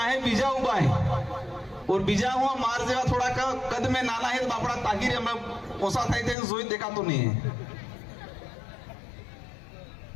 है बीजा उबा है और बीजा हुआ मार जेवा थोड़ा का कद में नाना है बापड़ा तागिर हमें ओसा था थे जोई देखा तो नहीं है।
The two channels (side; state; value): right; drops out; at 6.4 s